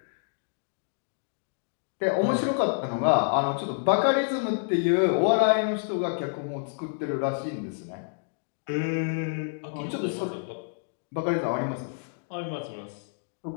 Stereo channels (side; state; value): right; silent; digital silence